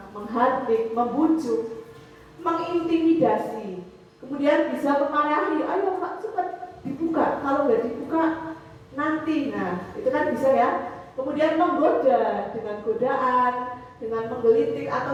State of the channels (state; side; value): identical; both; correlation 1.00